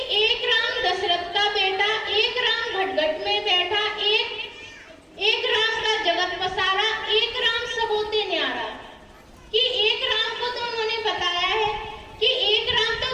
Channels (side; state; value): both; identical; correlation 1.00